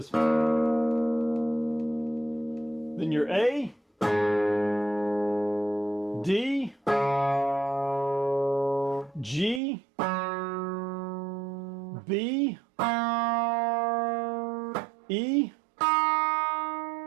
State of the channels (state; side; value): drops out; left; at 9.6 s